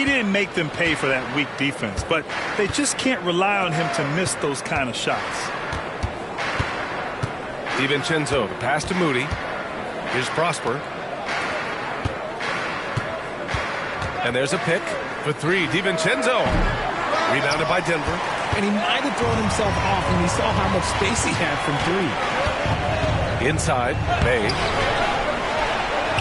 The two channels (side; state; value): both; identical; correlation 1.00